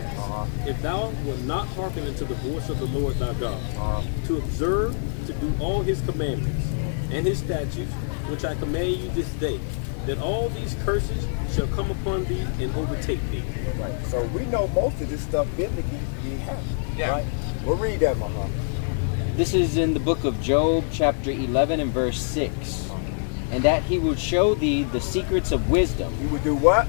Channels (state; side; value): silent; right; digital silence